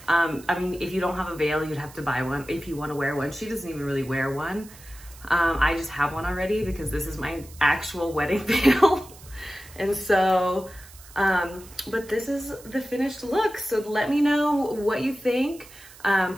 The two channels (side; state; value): right; noise; hiss, 20 dB below the sound